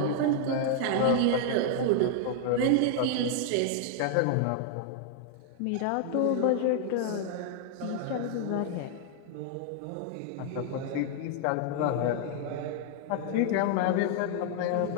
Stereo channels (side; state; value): both; different; correlation 0.00